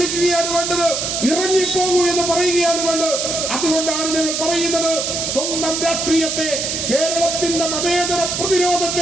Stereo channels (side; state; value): right; noise; hiss, 2 dB below the sound